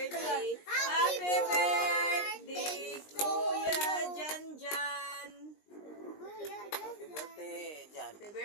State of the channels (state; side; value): late; right; 20 ms